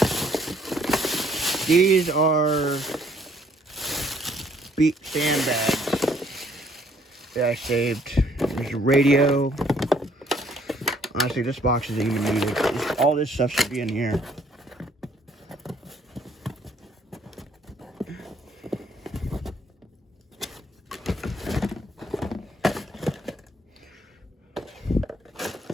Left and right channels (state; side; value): normal; both; correlation 0.63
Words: These are sandbags that I saved. There's a radio. Honestly, this box isn't even needed. All this stuff should be in here.